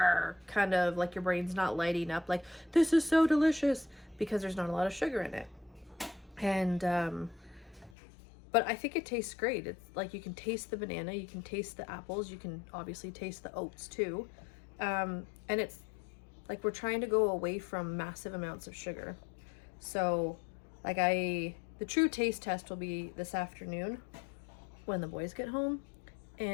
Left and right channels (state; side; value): drops out; right; at 8.0 s